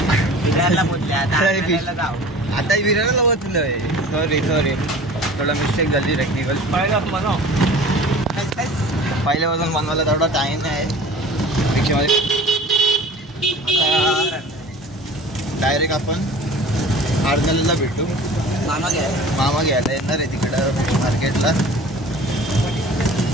आता विरारला बसलोय. सॉरी थोडा मिस्टेक झाली टेक्निकल. पहिल्यापासून बनवायला थोडा टाइम आहे रिक्षामध्ये. आता डायरेक्ट आपण आरणाला भेटू. मामा घ्यायला येणार आहे तिकडं मार्केटला.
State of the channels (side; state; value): both; normal; correlation 0.43